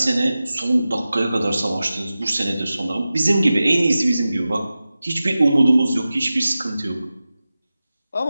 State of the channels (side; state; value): both; inverted; correlation -0.95